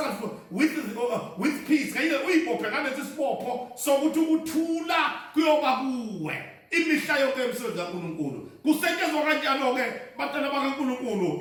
with peace kanye uyibophe ngalesi sibopho sokuthi ukuthula kuyoba kuwe imihla yonke emsebenzi kaNkulunkulu kusetshenzwa kanjalo ke bantwana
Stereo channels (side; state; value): both; identical; correlation 1.00